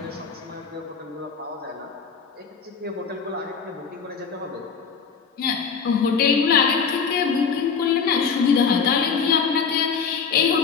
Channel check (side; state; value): right; quieter; 5.9 dB